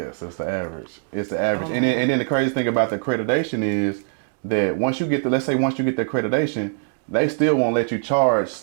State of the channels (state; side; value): silent; left; digital silence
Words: it's the average. It's the average. And then the crazy thing about the accreditation is that once you get the accreditation, they still won't let you charge